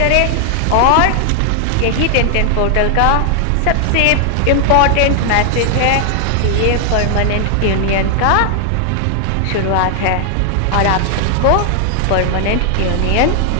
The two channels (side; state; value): both; different; correlation 0.00